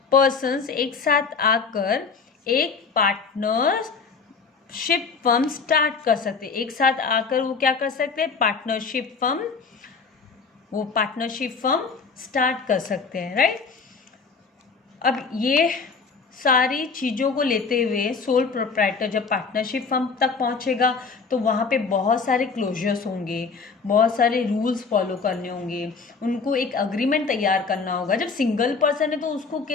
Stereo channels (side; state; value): right; quieter; 5.0 dB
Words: persons एक साथ आकर एक पार्टनरशिप फर्म स्टार्ट कर सकते। एक साथ आकर वो क्या कर सकते हैं? पार्टनरशिप फर्म स्टार्ट कर सकते हैं, राइट? अब ये सारी चीज़ों को लेते हुए सोल प्रोप्राइटर जब पार्टनरशिप फर्म तक पहुंचेगा तो वहाँ पे बहुत सारे क्लोजर्स होंगे, बहुत सारे रूल्स फॉलो करने होंगे, उनको एक अग्रीमेंट तैयार करना होगा। जब सिंगल पर्सन है तो उसको